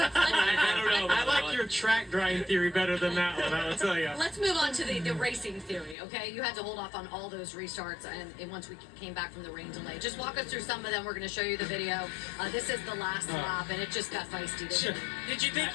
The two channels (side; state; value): right; drops out; at 6.0 s